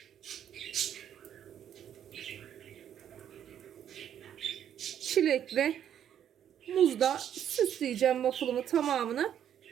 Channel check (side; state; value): left; quieter; 9.8 dB